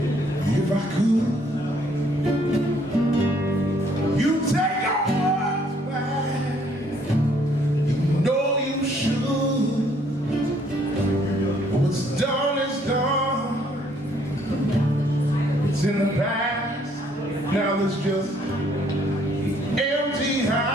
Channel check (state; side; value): normal; both; correlation 0.65